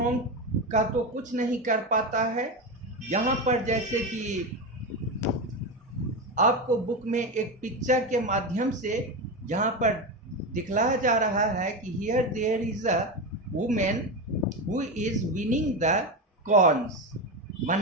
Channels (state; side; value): normal; both; correlation 0.17